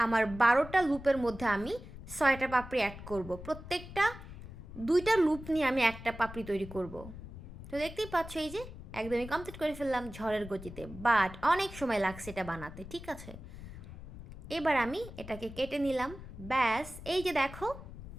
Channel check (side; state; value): left; noise; rumble, 13 dB below the sound